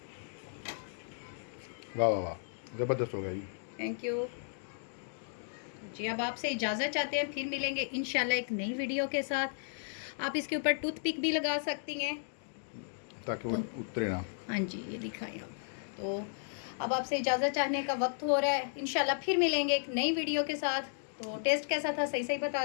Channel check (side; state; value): right; silent; digital silence